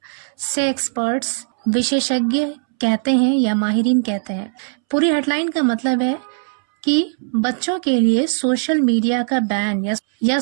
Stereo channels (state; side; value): silent; left; 66 dB below the other